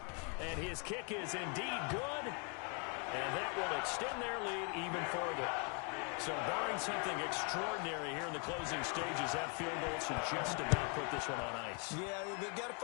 And his kick is indeed good, and that will extend their lead even further. So barring something extraordinary here in the closing stages, that field goal should just about put this one on ice. Yeah, they've got to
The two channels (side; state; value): right; quieter; 37.6 dB